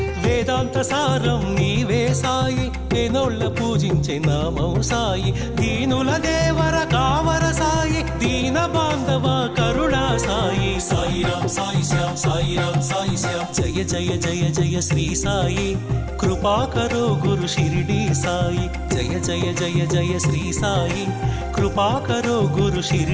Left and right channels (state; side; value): identical; both; correlation 1.00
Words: వేదాంత సారం నీవే సాయి వేనోళ్ళ పూజించే నామం సాయి। దీనుల దేవర కావర సాయి దీన బాంధవ కరుణా సాయి। సాయి రామ్ సాయి శ్యామ్ సాయి రామ్ సాయి శ్యామ్। జయ జయ జయ జయ శ్రీ సాయి कृपा करो गुरु शिरडी साई। जय जय जय जय श्री साई कृपा करो गुरु